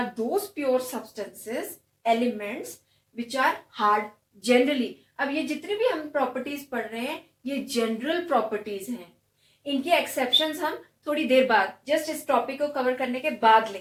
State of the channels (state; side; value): identical; both; correlation 1.00